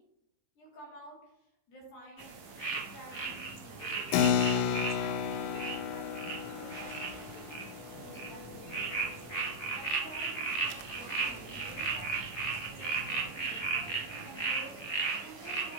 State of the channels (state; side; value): late; right; 13 ms